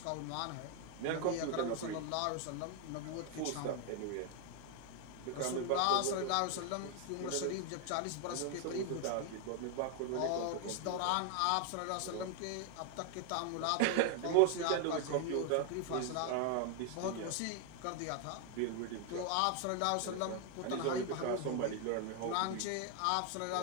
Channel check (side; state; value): both; different; correlation 0.00